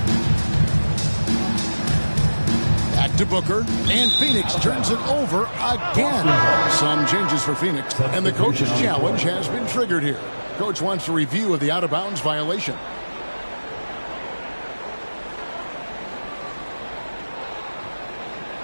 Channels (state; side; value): inverted; both; correlation -1.00